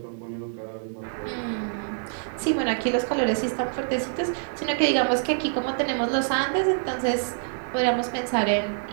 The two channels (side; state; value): left; silent; digital silence